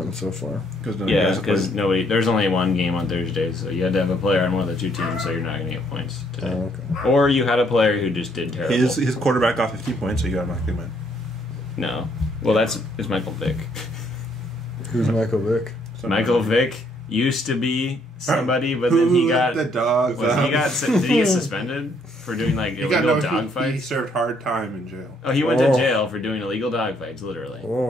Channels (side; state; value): both; normal; correlation 0.68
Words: so far. Yeah, because nobody. There's only one game on Thursdays, so you had to have a player on one of the two teams, so you're not gonna get points today. Oh, okay. Or you had a player who just did terrible. His quarterback got 50 points, so you automatically win. No. Well, it's Michael Vick. Who's Michael Vick? Michael Vick used to be somebody, but then he got. the dogs. Did he get suspended for doing like illegal dog He fights? served hard time in jail. Oh, he went to jail for doing illegal dog fights, literally,